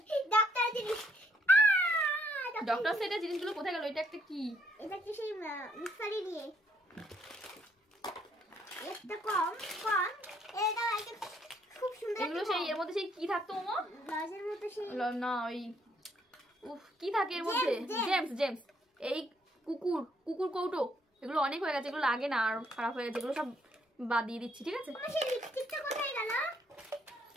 ডক্টর জিনিস। ডক্টর সেটের জিনিসগুলো কোথায় গেল? এটা একটা কি? এটা কি সেই মিক্সারি দিয়ে। এটা কম কম, এটা একটা খুব সুন্দর। এগুলো সেই এর মধ্যে সেই কি থাকতো মামা? লজের মতো সেই না ওই উফ কি থাকে এর মধ্যে? James James. এই কুকুর কুকুর কৌটো, এগুলো অনেক হয়ে গেছে, এগুলো লাগে না আর খারাপ হয়ে গেছে, এগুলো সব বাদ দিয়ে দিচ্ছি ঠিক আছে। আমার সেই লিপস্টিকটা কোথায় গেল?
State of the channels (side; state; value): both; normal; correlation 0.69